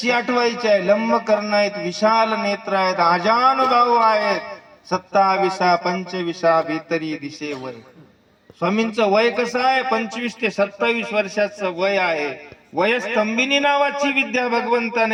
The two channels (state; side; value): identical; both; correlation 1.00